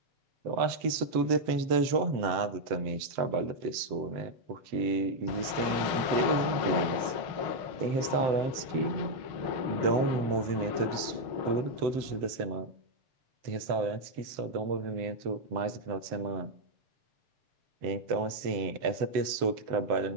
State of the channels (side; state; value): left; late; 7.8 ms